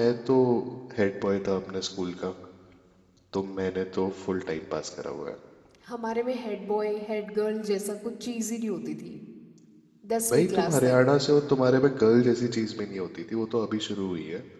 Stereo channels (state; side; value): identical; both; correlation 1.00